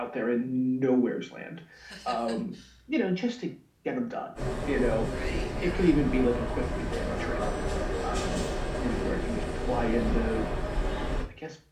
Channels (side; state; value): both; identical; correlation 1.00